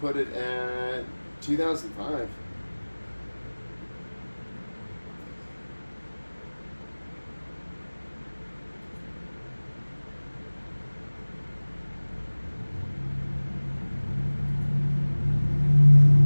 it at 2005.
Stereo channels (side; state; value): both; inverted; correlation -1.00